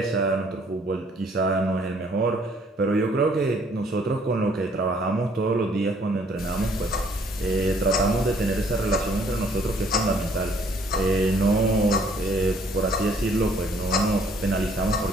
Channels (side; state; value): both; normal; correlation 0.62